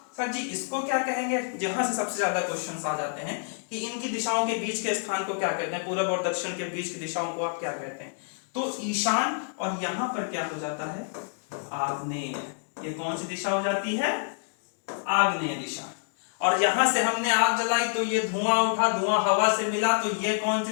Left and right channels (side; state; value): right; silent; digital silence